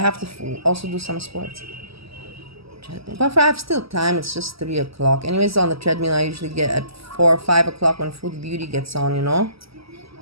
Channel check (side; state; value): left; late; 0.76 ms